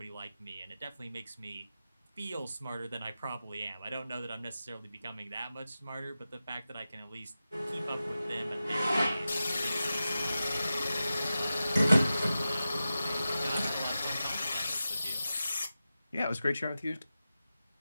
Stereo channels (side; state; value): both; inverted; correlation -0.93